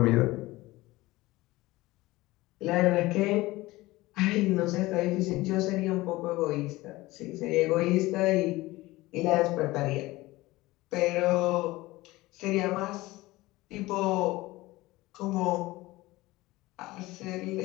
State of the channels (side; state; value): right; quieter; 19.4 dB